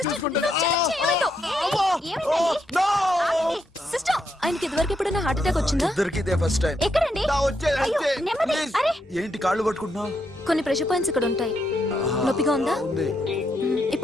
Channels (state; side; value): normal; both; correlation 0.79